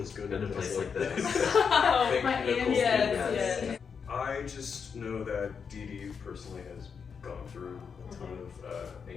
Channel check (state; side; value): quieter; right; 6.2 dB